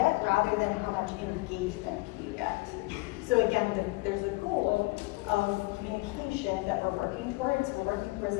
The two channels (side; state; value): right; quieter; 23.6 dB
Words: rather than how much engagement can you get. So again, there's a goal of communication that we're working towards. We're working towards